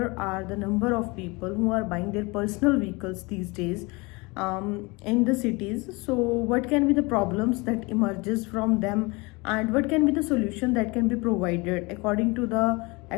are the number of people who are buying their personal vehicles these days in the cities. So what can be the problems that emerges from them, and what can be the solution that can be provided according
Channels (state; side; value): quieter; right; 26.0 dB